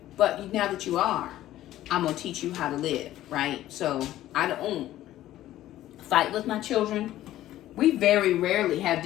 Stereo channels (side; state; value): right; quieter; 13.9 dB